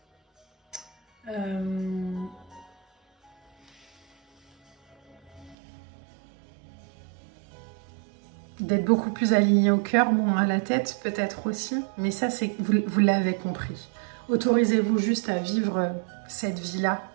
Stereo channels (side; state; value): left; drops out; at 5.6 s